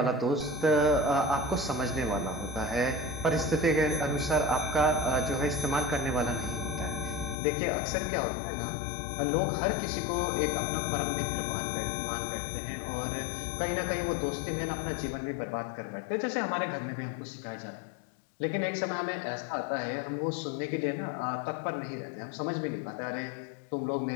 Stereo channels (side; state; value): right; drops out; at 7.4 s